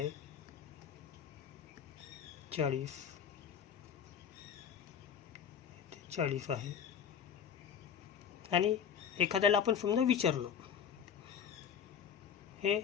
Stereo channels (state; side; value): quieter; right; 7.8 dB